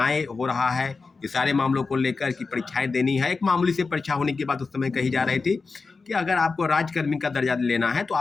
हो रहा है, ये सारे मामलों को लेकर कि परीक्षाएं देनी है। एक मामूली से परीक्षा होने की बात उस समय कही जा रही थी कि अगर आपको राज्यकर्मी का दर्जा लेना है तो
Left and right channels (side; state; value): right; quieter; 4.3 dB